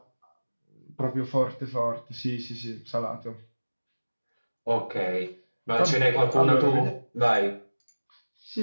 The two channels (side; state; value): both; inverted; correlation -1.00